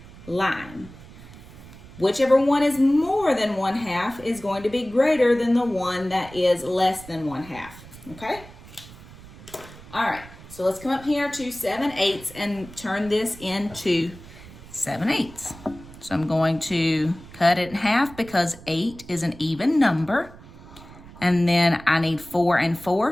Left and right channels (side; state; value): right; noise; rumble, 18 dB below the sound